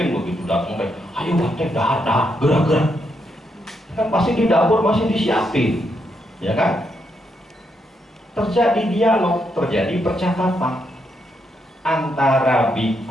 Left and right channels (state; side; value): normal; both; correlation 0.79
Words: begitu datang kayak, ayo Bante, dahar, gerak. Kan pasti di dapur masih disiapin, ya kan? Terjadi dialog, terjadi percakapan antara